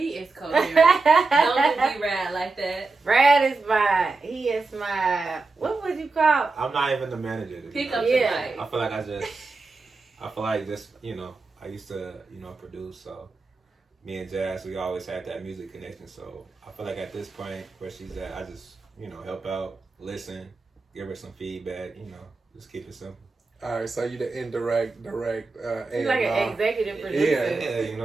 is coherent. Don't be Rad like that. Brad is he is my, what would you call? I'm not even the manager. Pick up Yeah. I feel like you know, I used to, you know, produce, so me and Jazz, we always had that music connection, so I feel like at this point where she's at, I just, you know, help out, listen, give her some feedback, you know, just keep it simple. All right, so you the indirect, direct, He's like an executive producer. Yeah, you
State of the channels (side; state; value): left; quieter; 3.8 dB